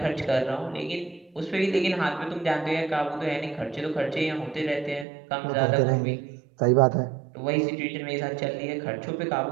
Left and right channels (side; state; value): left; drops out; at 5.1 s